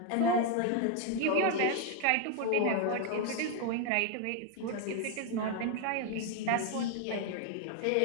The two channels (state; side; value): different; both; correlation 0.01